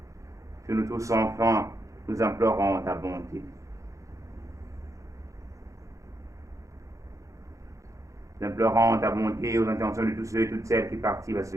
Sur nous tous enfants, nous implorons ta bonté. Nous implorons ta bonté aux intentions de tous ceux et toutes celles qui participent à cette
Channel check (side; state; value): left; late; 0.15 ms